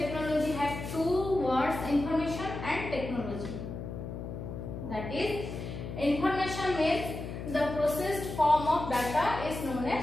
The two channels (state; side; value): noise; left; hum, 7 dB below the sound